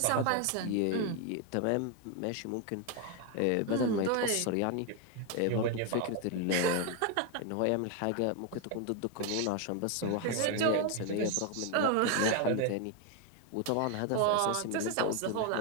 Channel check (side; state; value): both; different; correlation 0.01